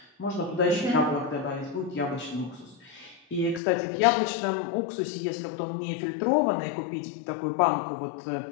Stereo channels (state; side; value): drops out; right; at 3.6 s